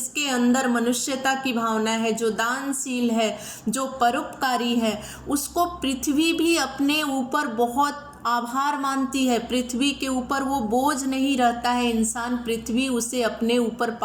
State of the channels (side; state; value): both; identical; correlation 1.00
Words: अंदर मनुष्यता की भावना है, जो दानशील है, जो परोपकारी है, उसको पृथ्वी भी अपने ऊपर बहुत आभार मानती है। पृथ्वी के ऊपर वो बोझ नहीं रहता है इंसान, पृथ्वी उसे अपने ऊपर